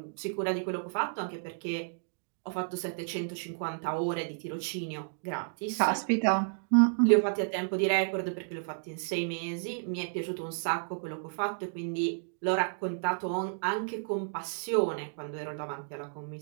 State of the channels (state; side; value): silent; left; digital silence